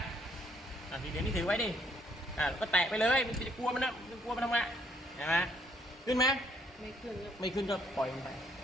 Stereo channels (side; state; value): both; normal; correlation 0.67